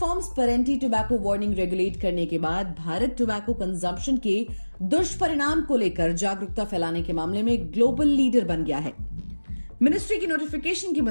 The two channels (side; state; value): both; inverted; correlation -1.00